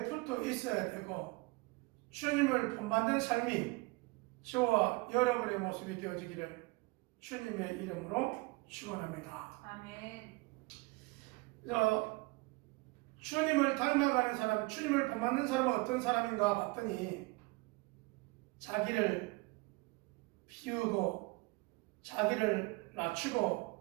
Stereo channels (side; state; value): left; quieter; 25.2 dB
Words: 붙어 있어야 되고 주님을 본받는 삶이 저와 여러분의 모습이 되어지기를 주님의 이름으로 축원합니다. 아멘. 주님을 닮아가는 사람, 주님을 본받는 사람은 어떤 사람인가 봤더니 자기를 비우고 자기를